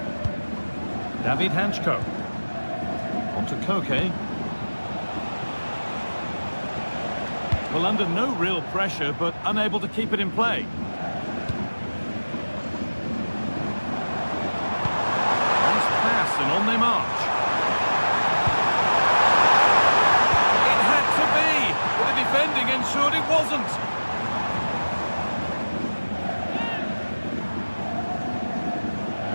David Hanchko. On to Koke. Well, under no real pressure, but unable to keep it in play. Nice pass, and on they march. It had to be, but the defending ensured it wasn't.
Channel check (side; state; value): both; inverted; correlation -1.00